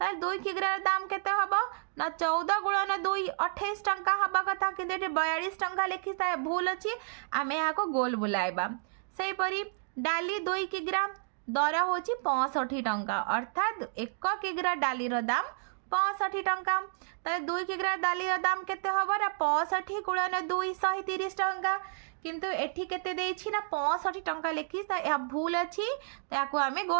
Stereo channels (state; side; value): silent; left; digital silence